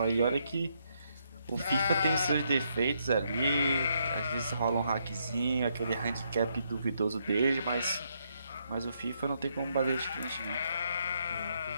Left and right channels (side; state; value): both; inverted; correlation -0.76